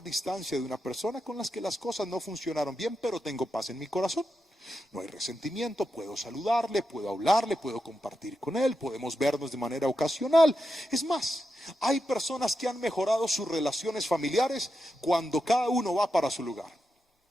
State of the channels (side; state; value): both; normal; correlation 0.87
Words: distancia de una persona con las que las cosas no funcionaron bien, pero tengo paz en mi corazón. No hay resentimiento, puedo saludarle, puedo hablarle, puedo compartir con él, podemos vernos de manera ocasional. Es más, hay personas que han mejorado sus relaciones familiares cuando cada uno va para su lugar.